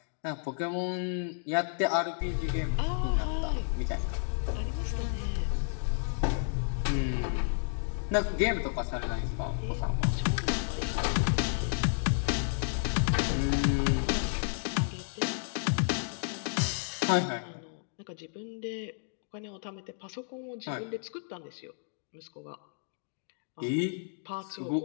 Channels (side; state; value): right; silent; digital silence